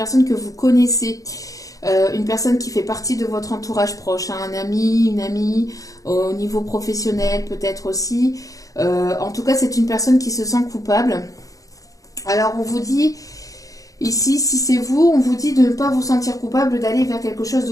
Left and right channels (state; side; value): late; right; 0.17 ms